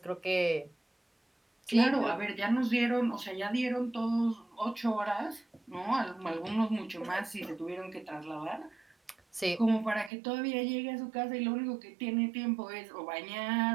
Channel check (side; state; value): left; drops out; at 10.1 s